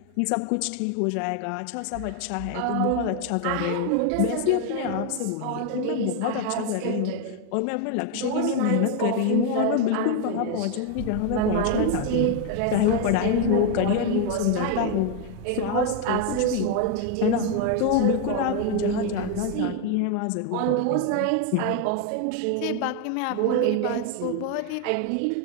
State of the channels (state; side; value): different; both; correlation 0.01